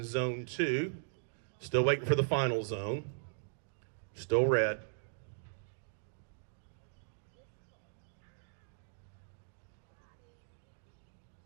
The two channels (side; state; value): left; silent; digital silence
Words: zone 2. Still waiting for the final zone. Still red.